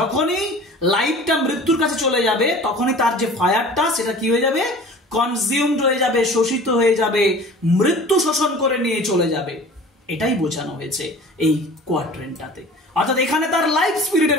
লাইফটা মৃত্যুর কাছে চলে যাবে তখনই তার যে ফায়ারটা সেটা কি হয়ে যাবে? কনজিউমড হয়ে যাবে, শোষিত হয়ে যাবে, মৃত্যু শোষণ করে নিয়ে চলে যাবে। এটাই বোঝানো হয়েছে এই কোয়াড্রেন্টটাতে। অর্থাৎ এখানে তার লাইফ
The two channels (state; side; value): normal; both; correlation 0.43